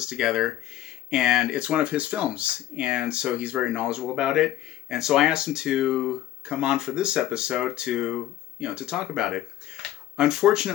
together, and it's one of his films, and so he's very knowledgeable about it. And so I asked him to come on for this episode to talk about it.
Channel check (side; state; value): right; quieter; 12.8 dB